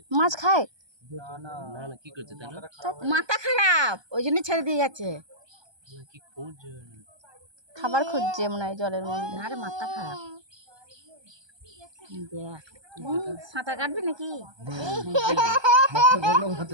মাছ খায়? না না কি করছে তাহলে? মাথা খারাপ, ওই জন্য ছেড়ে দিয়ে গেছে। কি খুঁজছে? খাবার খুঁজছে মনে হয় জলের মধ্যে। আরে মাথা খারাপ। দেখ সাঁতার কাটবি নাকি?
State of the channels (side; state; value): left; late; 1.2 ms